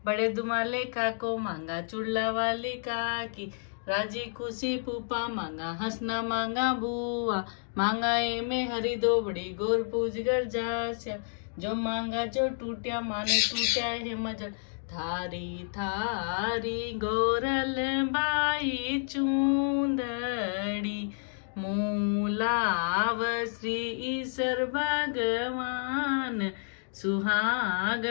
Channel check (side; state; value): right; silent; digital silence